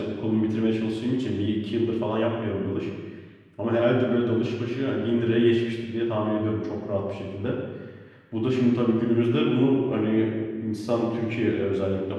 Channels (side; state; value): both; identical; correlation 1.00